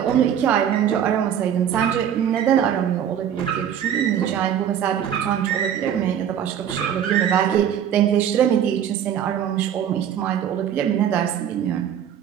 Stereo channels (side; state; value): left; quieter; 9.3 dB